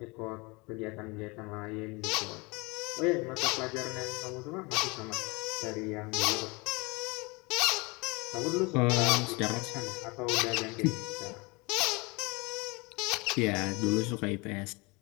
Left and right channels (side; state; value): right; quieter; 26.7 dB